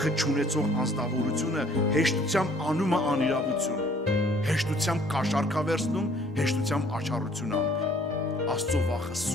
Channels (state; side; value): normal; both; correlation 0.58